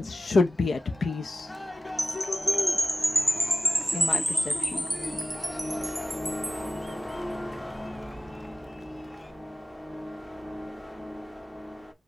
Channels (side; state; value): both; normal; correlation 0.96